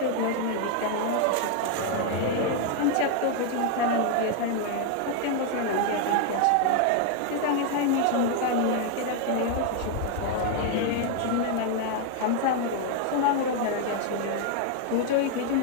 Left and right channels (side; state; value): both; different; correlation 0.00